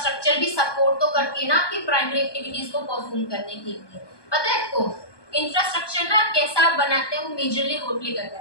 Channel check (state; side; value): late; right; 1.2 ms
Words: भी सपोर्ट तो करती है ना आपकी प्राइमरी एक्टिविटीज को परफॉर्म करने के लिए। पता है आपको इंफ्रास्ट्रक्चर ना कैसा आप बनाते हैं वो मेजरली रोल प्ले करता